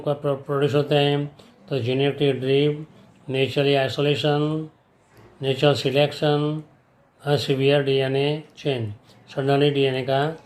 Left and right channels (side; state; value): both; identical; correlation 1.00